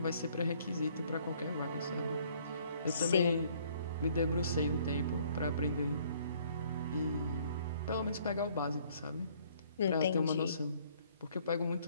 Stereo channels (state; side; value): inverted; both; correlation -0.61